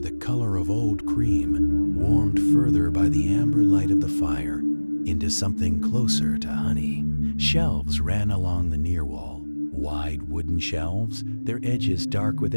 the color of old cream, warmed further by the amber light of the fire into something closer to honey. Shelves ran along the near wall, wide wooden shelves, their edges dark with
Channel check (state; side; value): inverted; both; correlation -1.00